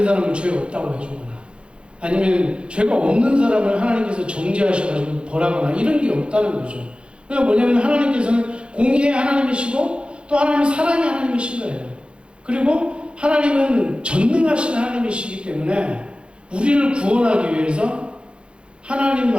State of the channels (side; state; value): left; late; 0.056 ms